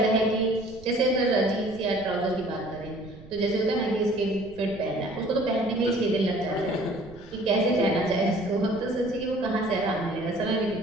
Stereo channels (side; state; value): right; noise; rumble, 19 dB below the sound